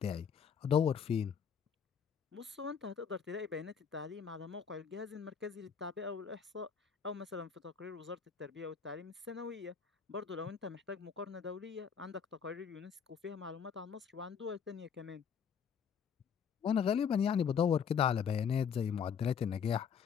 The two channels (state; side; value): quieter; right; 7.0 dB